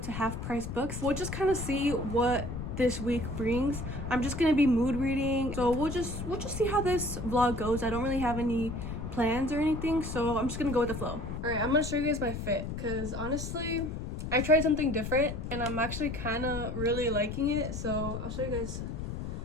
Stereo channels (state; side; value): noise; left; rumble, 6 dB below the sound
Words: Half Price Books. We'll just kind of see what this week brings. I'm just gonna be mood reading, so we'll just see how this vlog goes. I don't really have any plans or anything, so I'm just gonna go with the flow. All right, I'm gonna show you guys my fit, because honestly, I tried something different, and I'm actually kind of really liking it, so I'll show you guys